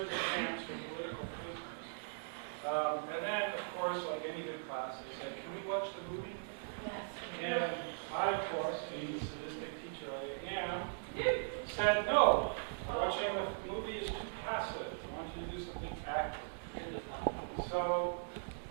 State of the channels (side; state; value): left; silent; digital silence